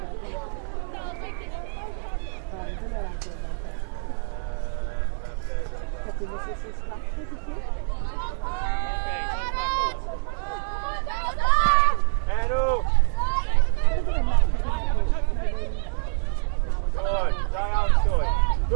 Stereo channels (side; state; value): left; silent; 58 dB below the other